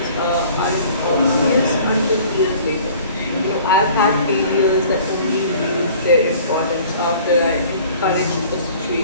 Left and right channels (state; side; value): inverted; both; correlation -0.50